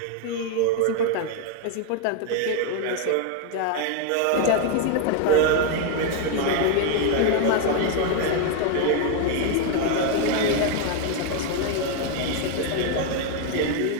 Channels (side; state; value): both; different; correlation 0.01